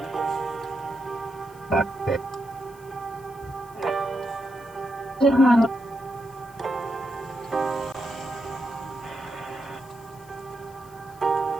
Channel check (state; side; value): noise; left; hiss, 25 dB below the sound